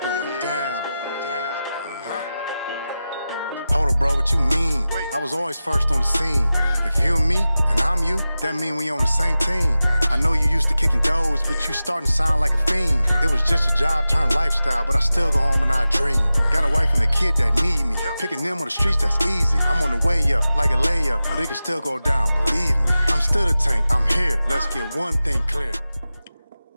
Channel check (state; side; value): inverted; both; correlation -0.94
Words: down. Hold up, bro, what you mean? I was always first on the scene. If you and me, and I'm you, that mean we on the same team. I know you used to kicking doors, but you starting to sound like a fiend. It was just a job turned lifestyle, but I still go home and I dream. Got a wife and a kid that need me. Picking them on the streets, that's easy. I'm on the way up, like a layup, but it can still go down, believe me. I'm still the tank, I'm here. Let's get one thing clear.